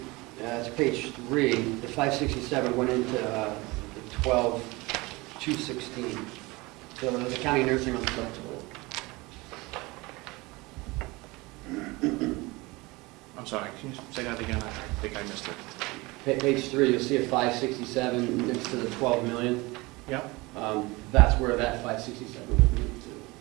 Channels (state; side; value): quieter; left; 23.3 dB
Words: it's page 3, the 567 went into the 12,216. So the county nursing home flexible. I'm sorry, can you say that again? I think I missed it. Page 3, you'll see a 567 next to the 12 million. Yep. That's where that 567 would be